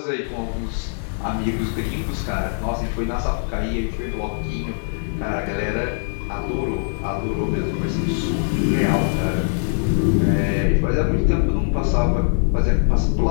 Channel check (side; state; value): right; silent; 59 dB below the other